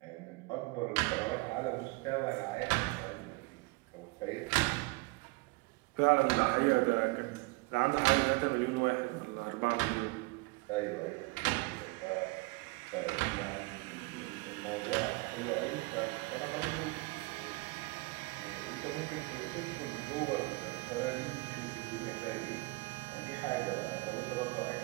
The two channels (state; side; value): quieter; left; 25.1 dB